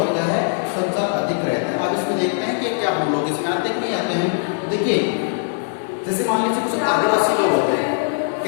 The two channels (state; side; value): silent; right; 65 dB below the other